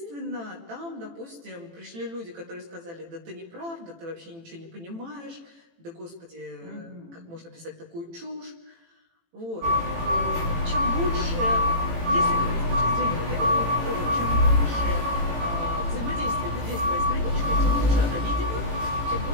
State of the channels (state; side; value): late; left; 18 ms